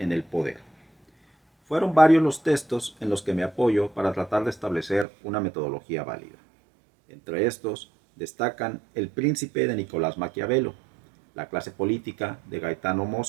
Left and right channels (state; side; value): drops out; left; at 5.1 s